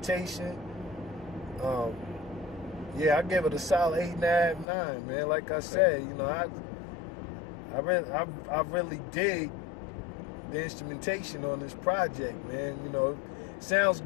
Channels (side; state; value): right; drops out; at 4.7 s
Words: Yeah, I gave it a solid 8.5, 9, man. Like I said, I really dig the instrumentation on this project, man. It sounds